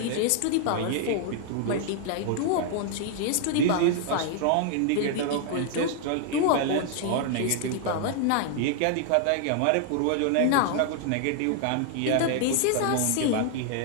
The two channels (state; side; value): different; both; correlation 0.00